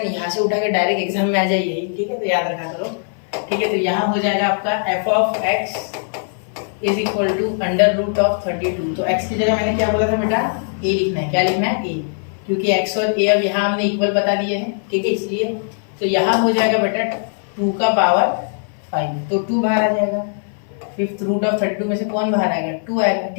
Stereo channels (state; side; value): silent; right; 60 dB below the other